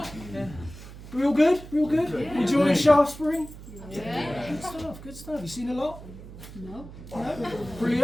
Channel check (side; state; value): right; noise; hum, 15 dB below the sound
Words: Yeah. We all good? We all good? Yeah. Enjoying Shaftesbury? Yeah. Good stuff. You seen a lot? No.